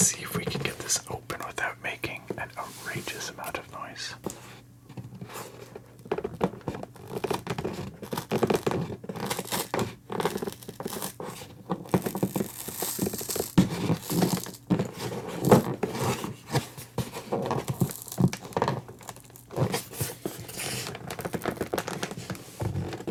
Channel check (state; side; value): identical; both; correlation 1.00